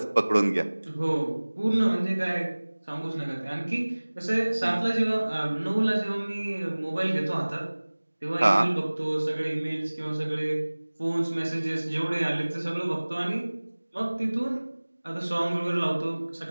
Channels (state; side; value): inverted; both; correlation -1.00